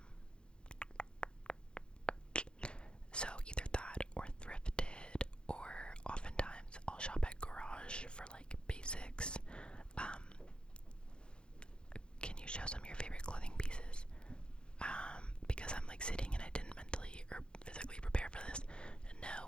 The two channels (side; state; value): right; late; 0.052 ms